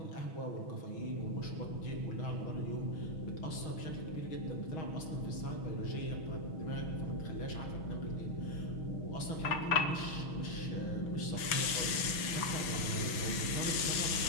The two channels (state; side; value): late; right; 6.2 ms